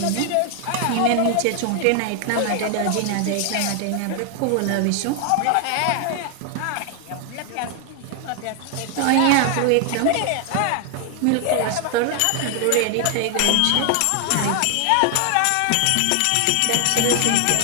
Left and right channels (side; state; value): both; different; correlation 0.00